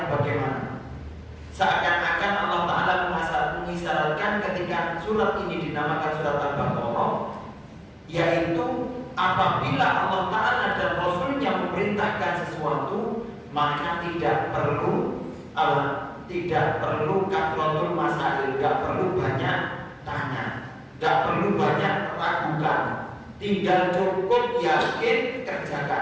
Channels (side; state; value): both; identical; correlation 1.00